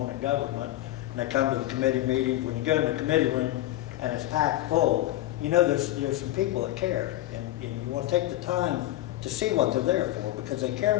on in government. And they come to the committee meetings. When you go in the committee room and it's packed full, there's some people that care. And you want to take the time to see what they're there for, because they care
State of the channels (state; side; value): quieter; right; 15.4 dB